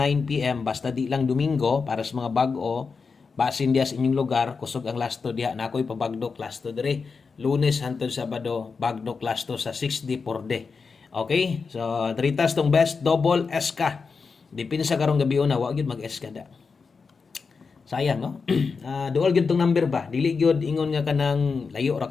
PM basta di lang Domingo para sa mga bag-o basin diya sa inyong lugar kusog ang lasto diha na ako'y pabagdok lasto diri Lunes hangtod Sabado bagdok lasto sa 6D 4D. Okay, so dritas tong best double SK dipin sa karong gabi una wa gyud mag SK da sayang no. Duol gyud tong number ba dili gyud ingon nga kanang layo ra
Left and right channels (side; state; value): right; quieter; 5.0 dB